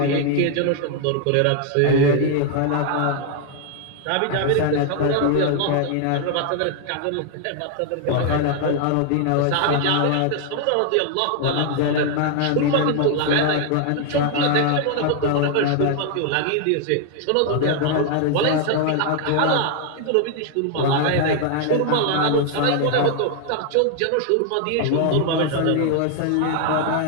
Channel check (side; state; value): both; different; correlation 0.00